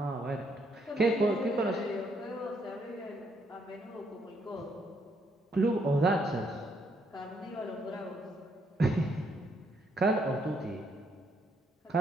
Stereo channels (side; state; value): both; normal; correlation 0.73